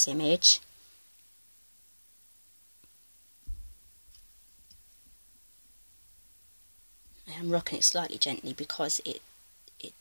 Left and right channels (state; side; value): inverted; both; correlation -1.00